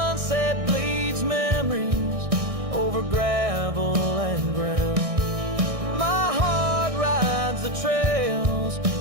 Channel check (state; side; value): late; left; 1.6 ms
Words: bleeds memories over gravel and ground. My heart rides the trails